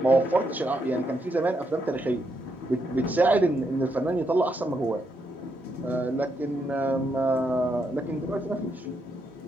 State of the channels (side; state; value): both; normal; correlation 0.79